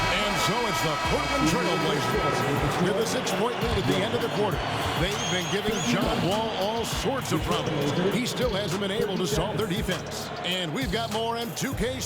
And so it's the Portland Trail Blazers with a 6-point lead at the end of the quarter. They've been giving John Wall all sorts of problems. He still hasn't been able to solve their defense. And we've got more on 2K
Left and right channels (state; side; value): identical; both; correlation 1.00